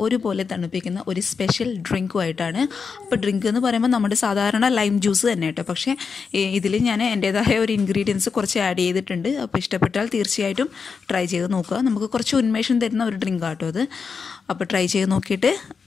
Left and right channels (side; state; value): right; quieter; 5.5 dB